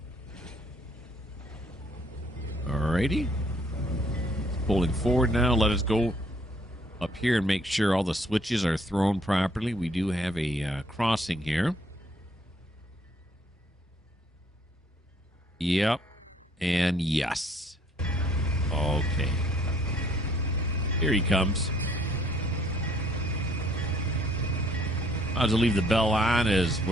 Alrighty. It's pulling forward now. Let us go up here and make sure all the switches are thrown properly. We do have a crossing here. Yep. And yes. Okay. Here he comes. I'll just leave the bell on as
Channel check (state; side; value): normal; both; correlation 0.63